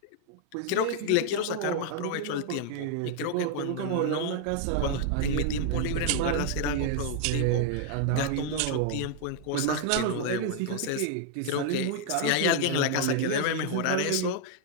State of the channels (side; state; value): both; different; correlation 0.00